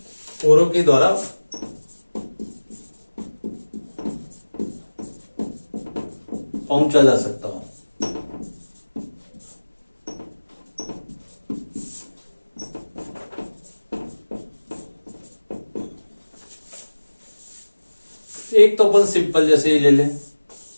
पहुंचा जा सकता हो। एक तो अपन सिंपल जैसे ही ले लें,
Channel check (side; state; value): both; inverted; correlation -1.00